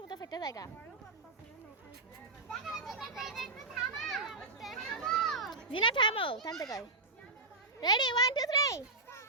মতো ফেটে জায়গা। জিনা থামো, থামতে কই। রেডি 1 2 3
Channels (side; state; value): left; quieter; 3.3 dB